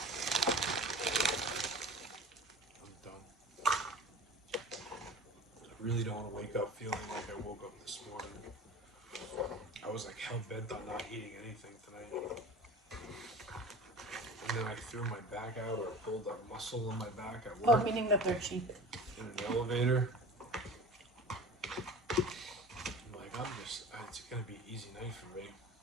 I'm done. I really don't want to wake up feeling like I woke up this morning. I was like hell bent on not eating anything tonight. And then I threw my back out or pulled a muscle in my back at Oh, work meaning that they're cheap. in an elevator. I'm like, it's gonna be an easy night for me.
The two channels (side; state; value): both; normal; correlation 0.38